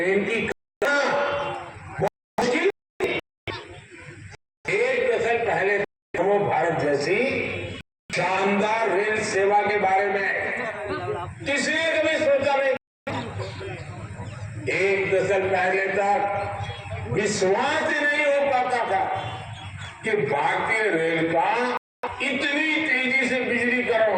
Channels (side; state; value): both; identical; correlation 1.00